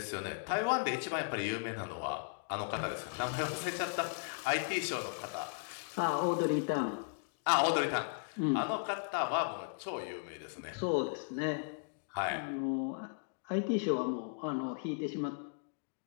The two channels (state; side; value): silent; right; digital silence